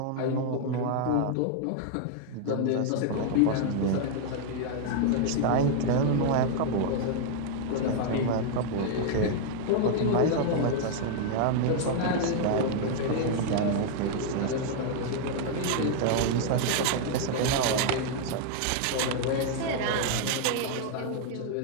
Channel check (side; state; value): both; different; correlation 0.00